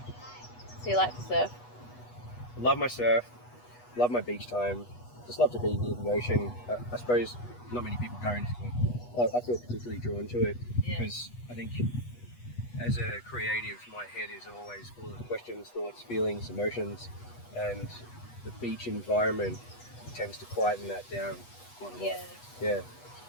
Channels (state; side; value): late; right; 8.2 ms